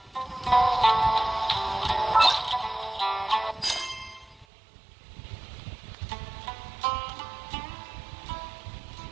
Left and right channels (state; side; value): drops out; left; at 4.5 s